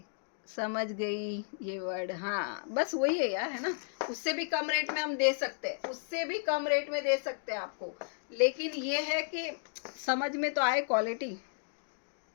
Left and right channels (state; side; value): silent; right; digital silence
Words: समझ गई ये वर्ड। हाँ बस वही है यार, है ना। उससे भी कम रेट में हम दे सकते हैं, उससे भी कम रेट में दे सकते हैं आपको, लेकिन ये है कि समझ में तो आए क्वालिटी।